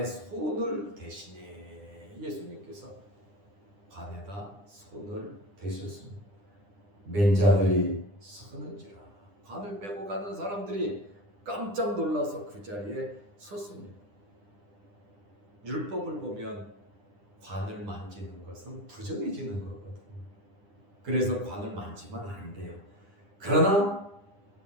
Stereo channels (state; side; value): late; left; 9.9 ms